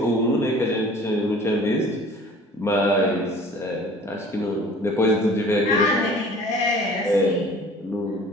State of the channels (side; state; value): both; normal; correlation 0.47